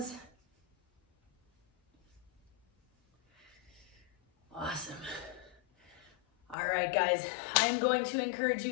Awesome. All right, guys, I'm going to encourage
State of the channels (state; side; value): drops out; right; at 6.6 s